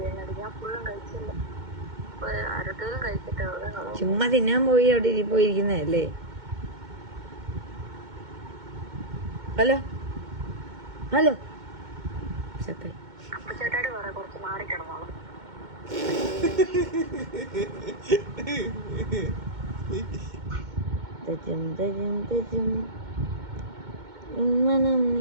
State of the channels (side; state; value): left; late; 2.2 ms